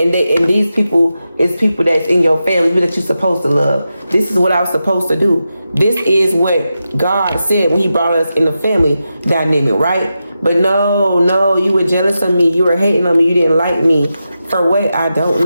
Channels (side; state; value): both; inverted; correlation -0.89